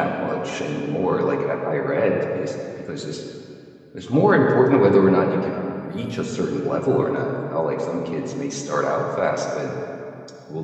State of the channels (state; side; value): identical; both; correlation 1.00